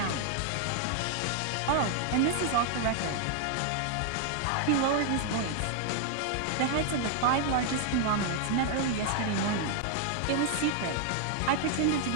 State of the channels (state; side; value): different; both; correlation 0.00